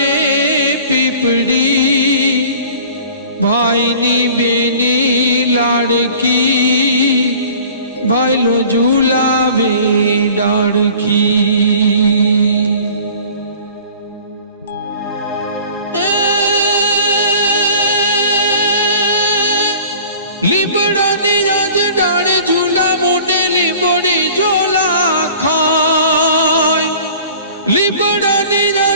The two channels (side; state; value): both; inverted; correlation -0.46